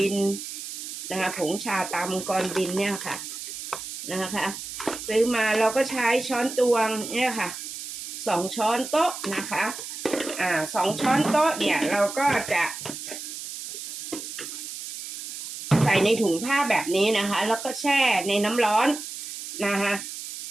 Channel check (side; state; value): right; noise; hiss, 8 dB below the sound